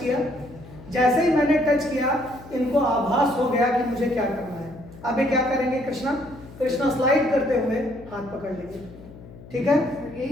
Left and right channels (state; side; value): noise; left; hum, 18 dB below the sound